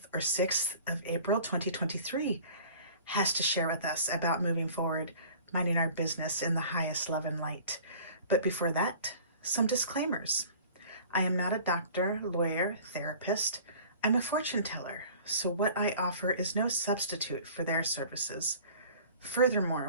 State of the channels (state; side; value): inverted; both; correlation -0.46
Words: or 6th of April 2023 has to share with us about moving forward, minding our business in the highest love and light. But before that, some disclaimers. I am not a doctor, lawyer, therapist. I'm a fortune teller, so what I offer is no substitute for their services.